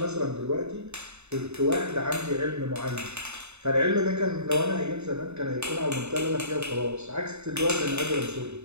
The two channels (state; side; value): late; left; 0.81 ms